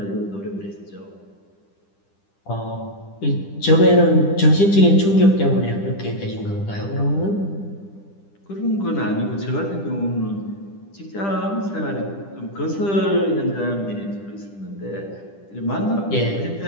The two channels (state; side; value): late; right; 10 ms